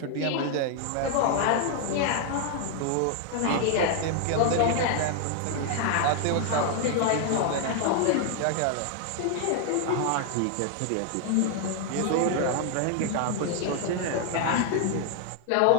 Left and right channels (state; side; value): different; both; correlation 0.00